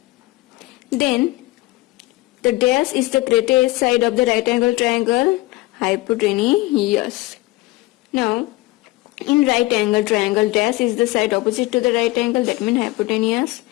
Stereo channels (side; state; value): right; quieter; 20.2 dB